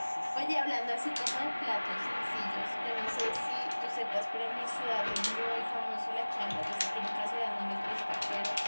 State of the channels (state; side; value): inverted; both; correlation -1.00